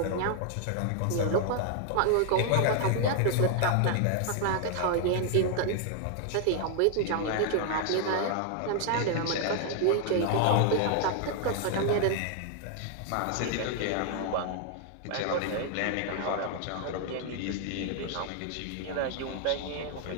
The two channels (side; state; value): both; different; correlation 0.00